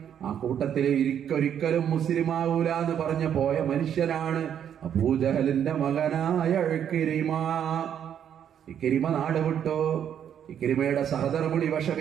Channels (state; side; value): quieter; left; 9.1 dB